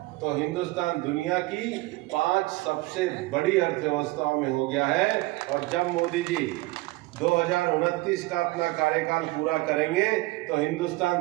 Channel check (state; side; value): quieter; left; 21.1 dB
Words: तो हिंदुस्तान दुनिया की 5 सबसे बड़ी अर्थव्यवस्थाओं में हो गया है, और जब मोदी जी 2029 का अपना कार्यकाल पूरा करेंगे तो